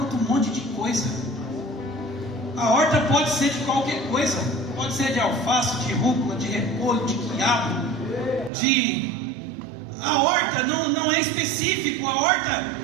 um monte de coisa. A horta pode ser de qualquer coisa. Pode ser de alface, de rúcula, de repolho, de quiabo, A horta não é específico. A horta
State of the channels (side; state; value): left; drops out; at 8.5 s